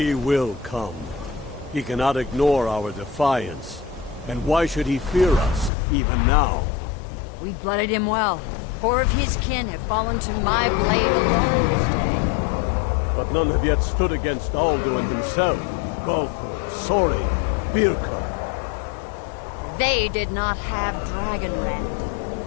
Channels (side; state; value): right; drops out; at 5.7 s